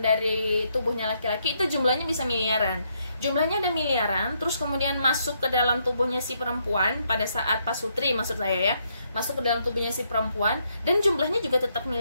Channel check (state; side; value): inverted; both; correlation -0.75